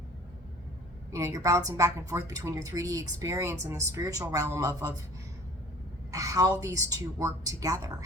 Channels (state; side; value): normal; both; correlation 0.49